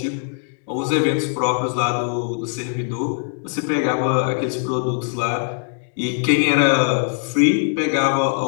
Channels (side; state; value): right; silent; 61 dB below the other